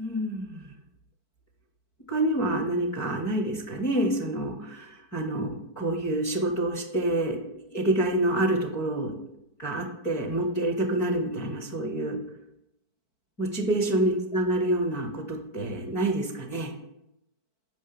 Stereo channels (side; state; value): right; late; 4.5 ms